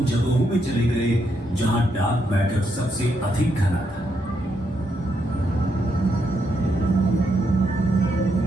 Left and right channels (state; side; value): normal; both; correlation 0.79